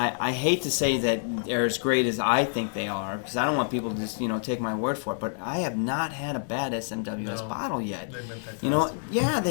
hate to say that they're as great as I think they are, because I don't want people to just, take my word for it, but I have not had a bad SMWS bottle yet. They've been fantastic. You know, yeah,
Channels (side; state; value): right; silent; 60 dB below the other